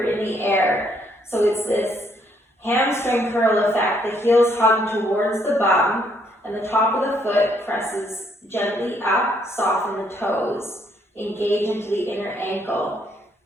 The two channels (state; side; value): normal; both; correlation 0.70